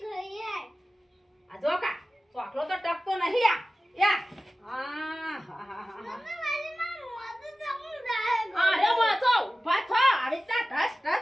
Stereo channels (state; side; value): normal; both; correlation 0.96